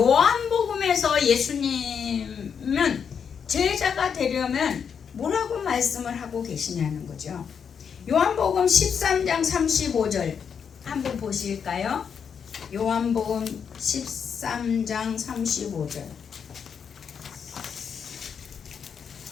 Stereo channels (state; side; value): quieter; right; 7.0 dB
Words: 예수님은 제자가 되려면 뭐라고 말씀을 하고 계시냐는 거죠. 요한복음 13장 35절 한번 보실까요? 요한복음 13장 35절.